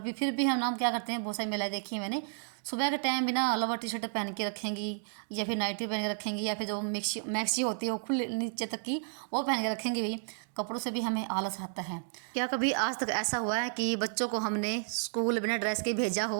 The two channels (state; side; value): silent; left; digital silence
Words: भी हम नाम क्या करते हैं, बहुत सारी महिलाएं देखी है मैंने, सुबह के टाइम भी ना लोअर टी शर्ट पहन के रखेंगी, या फिर नाइटी पहन के रखेंगी, या फिर जो मैक्सी मैक्सी होती है वो खुले नीचे तक की, वो पहन के रखेंगे भाई। कपड़ों से भी हमें आलस आता है। क्या कभी आज तक ऐसा हुआ है कि बच्चों को हमने स्कूल बिना ड्रेस के भेजा हो?